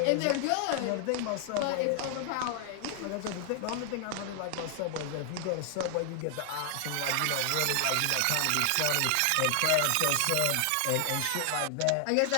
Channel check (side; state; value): both; different; correlation 0.00